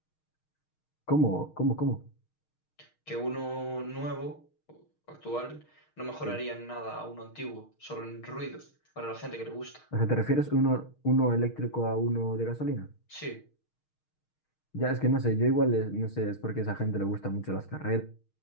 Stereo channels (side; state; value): right; late; 6.4 ms